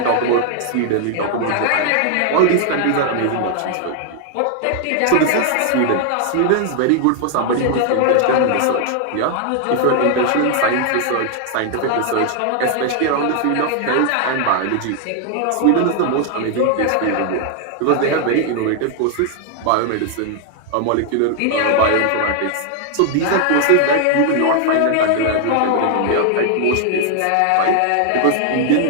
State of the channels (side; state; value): both; different; correlation 0.00